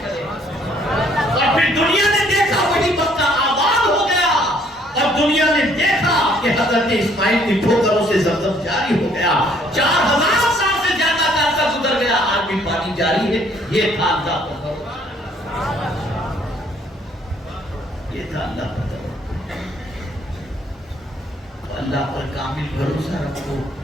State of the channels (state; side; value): normal; both; correlation 0.63